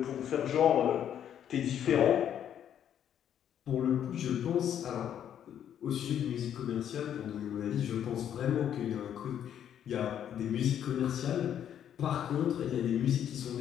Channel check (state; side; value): quieter; right; 9.7 dB